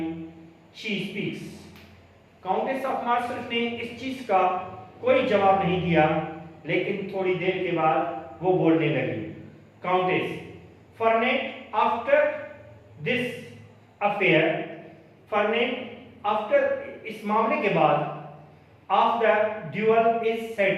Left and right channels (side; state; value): both; identical; correlation 1.00